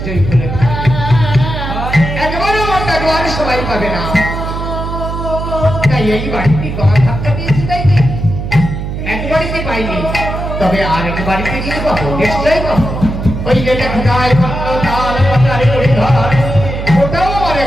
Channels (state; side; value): noise; right; hum, 5 dB below the sound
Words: ভুলে থাকবে, একবারও একবার সবাই পাবে না। তাই এই বাড়িতে গলা ধাক্কা দিয়েছি, তাই কি এক বাড়িতে পাইনি, তবে আর এক বাড়িতে কিন্তু পাবো, নিশ্চয়ই পাবো। ওই যেটা খোঁজায় ওটাও আমার